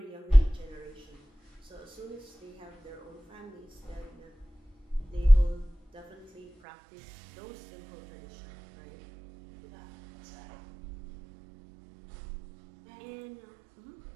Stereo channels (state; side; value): drops out; left; at 6.5 s